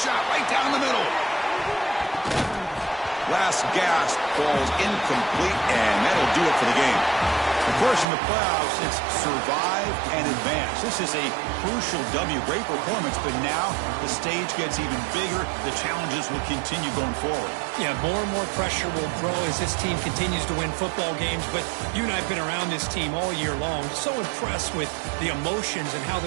right down the middle. Last gasp falls incomplete, and that'll do it for the game. Of course, in the playoffs, it's survive and advance. This is a crucial W. Great performance, but now the stage gets even bigger. The challenges will continue going forward. Yeah, more and more pressure will grow as this team continues to win football games. But you and I have been around this team all year long. So impressed with the emotions and how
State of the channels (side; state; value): left; drops out; at 8.1 s